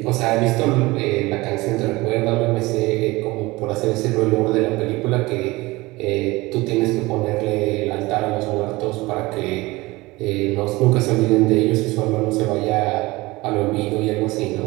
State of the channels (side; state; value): left; quieter; 21.3 dB